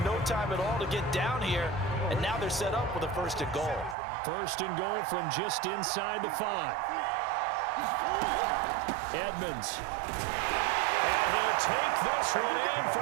no time at all to get down here. And now they're set up with a 1st and goal. 1st and goal from just inside the 5. Edmonds. And he'll take this one in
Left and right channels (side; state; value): left; drops out; at 4.0 s